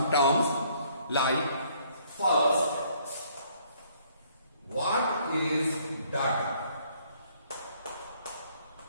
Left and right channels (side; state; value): both; inverted; correlation -0.64